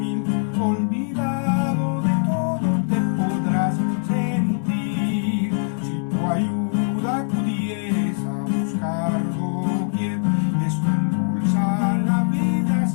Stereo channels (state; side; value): silent; right; 61 dB below the other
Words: olvidado de todo te podrás sentir. Si tu ayuda acudieres a buscar doquier, esto endulza la vida.